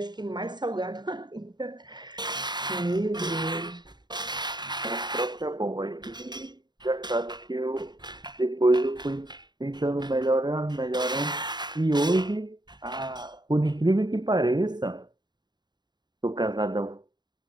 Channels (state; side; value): late; left; 0.21 ms